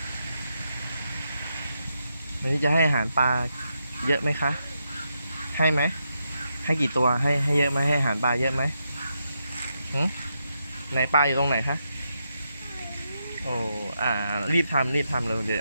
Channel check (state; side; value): inverted; both; correlation -0.83